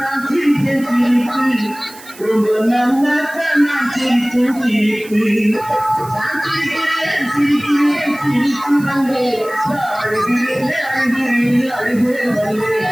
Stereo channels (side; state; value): right; noise; hiss, 19 dB below the sound